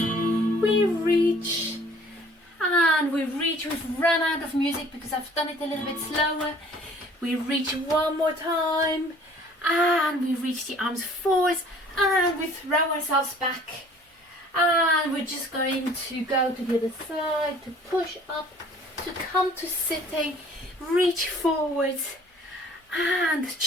we reach, we've run out of music because I've done it a little bit slower. We reach one more time, and we reach the arms forwards, and we throw ourselves back, and we're just going to go to the other side, to push up, to come to sitting, reach forwards, and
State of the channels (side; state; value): both; normal; correlation 0.53